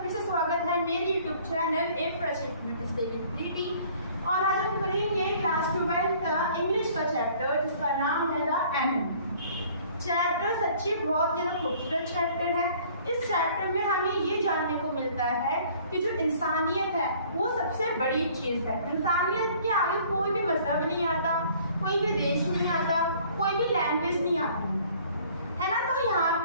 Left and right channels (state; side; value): inverted; both; correlation -0.55